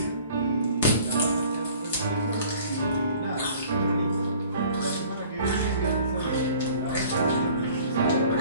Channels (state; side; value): inverted; both; correlation -0.51